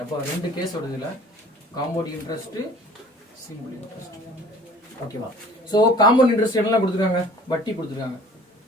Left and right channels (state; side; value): normal; both; correlation 0.49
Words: அப்போ ரெண்டு கேஸ் வருது இல்ல, காம்பவுண்ட் இன்ட்ரெஸ்ட், சிம்பிள் இன்ட்ரெஸ்ட். ஓகேவா? சோ காம்பவுண்ட் இன்ட்ரெஸ்ட் என்னெல்லாம் கொடுத்துருக்காங்க? வட்டி கொடுத்துருக்காங்க.